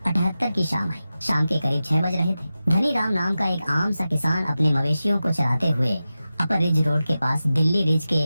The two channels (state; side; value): inverted; both; correlation -0.94